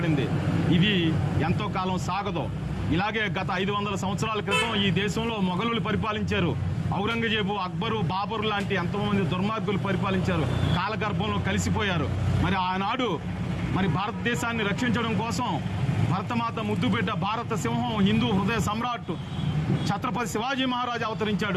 ఇది ఎంతో కాలం సాగదు. ఇలాగే గత 500 సంవత్సరాల క్రితం ఈ దేశంలో మొఘలులు పరిపాలించారు. ఔరంగజేబు, అక్బరు, బాబరు లాంటి ఎంతోమంది దుర్మార్గులు పరిపాలించారు, కాలగర్భంలో కలిసిపోయారు. మరి ఆనాడు మరి భారతదేశాన్ని రక్షించడం కోసం భరతమాత ముద్దుబిడ్డ, భారత సింహం, హిందూ హృదయ సమ్రాట్ ఛత్రపతి శివాజీ మహారాజ్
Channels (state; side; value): identical; both; correlation 1.00